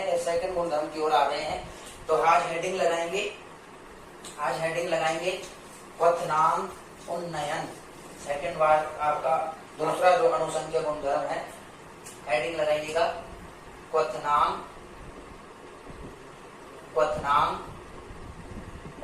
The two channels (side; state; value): both; identical; correlation 1.00